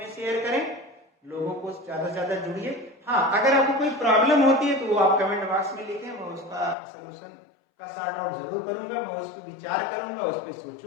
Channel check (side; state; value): right; drops out; at 6.8 s